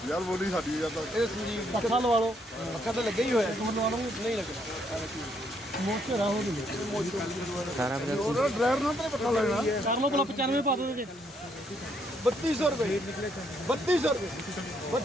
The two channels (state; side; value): normal; both; correlation 0.72